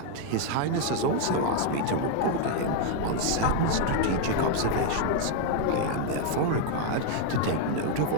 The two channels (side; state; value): both; different; correlation 0.00